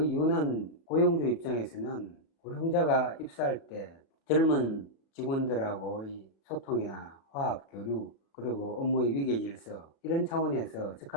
이유는 고용주 입장에서는 고령자가 입사할 때 젊은 직원들하고의 소통이나 화합, 교류, 그리고 업무의 위계 질서 이런 차원에서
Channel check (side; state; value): right; late; 30 ms